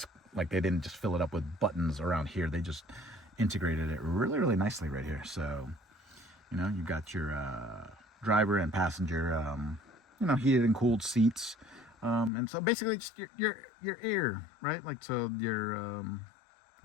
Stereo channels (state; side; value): drops out; right; at 12.3 s